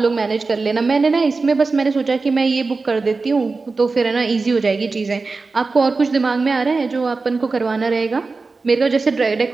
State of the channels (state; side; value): quieter; left; 4.0 dB